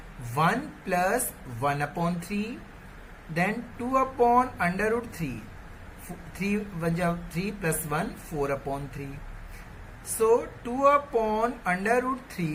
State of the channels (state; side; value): identical; both; correlation 1.00